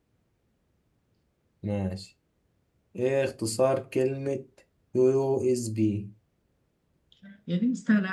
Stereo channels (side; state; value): both; identical; correlation 1.00